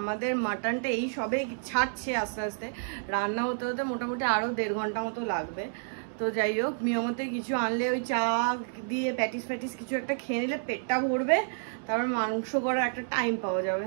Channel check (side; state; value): left; silent; digital silence